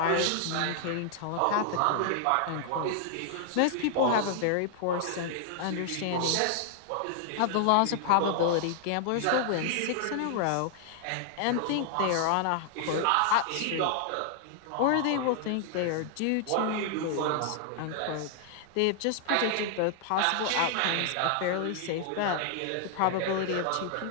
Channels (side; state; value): both; different; correlation 0.00